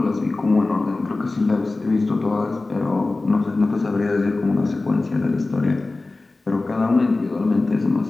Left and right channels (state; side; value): quieter; right; 3.3 dB